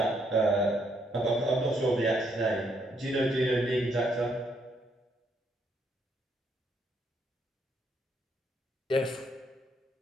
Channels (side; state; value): both; normal; correlation 0.73